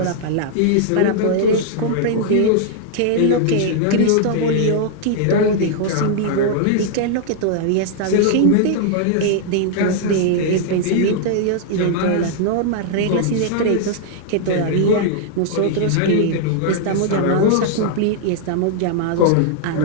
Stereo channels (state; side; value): different; both; correlation -0.01